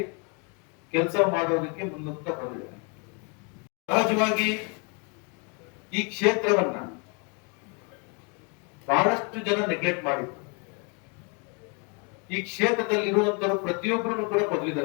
ಕೆಲಸ ಮಾಡೋದಕ್ಕೆ ಮುನ್ನುಗ್ತಾ ಬಂದಿದೆ. ಸಹಜವಾಗಿ ಈ ಕ್ಷೇತ್ರವನ್ನ ಬಹಳಷ್ಟು ಜನ ನೆಗ್ಲೆಕ್ಟ್ ಮಾಡಿದ್ರು. ಈ ಕ್ಷೇತ್ರದಲ್ಲಿ ಇರುವಂತರು ಪ್ರತಿಯೊಬ್ಬರನ್ನು ಕೂಡ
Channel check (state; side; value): quieter; right; 33.3 dB